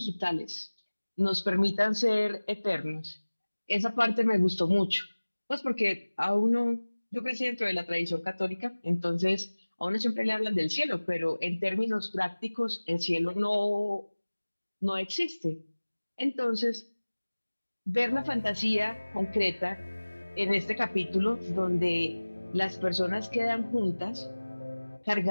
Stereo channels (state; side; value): inverted; both; correlation -1.00